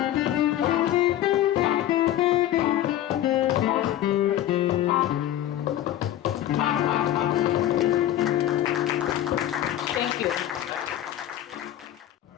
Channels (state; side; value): quieter; right; 12.6 dB